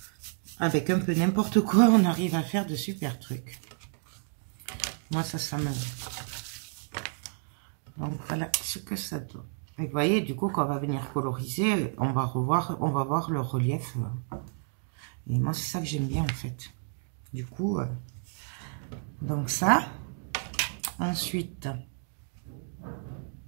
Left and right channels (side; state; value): left; silent; 55 dB below the other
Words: avec un peu n'importe quoi, on arrive à faire de super trucs. Moi, ça me... Donc, voilà ce que ça donne. Et vous voyez, du coup, quand on va venir coloriser, on va voir le relief. Et moi, c'est ça que j'aime bien, en fait. Du coup, donc ça. Ensuite,